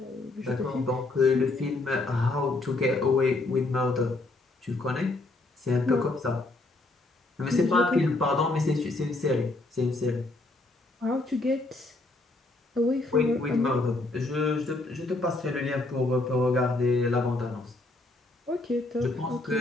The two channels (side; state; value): right; quieter; 3.0 dB